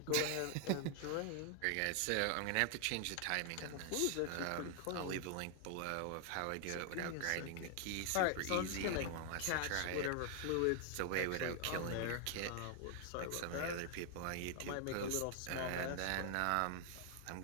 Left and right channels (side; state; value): both; different; correlation 0.00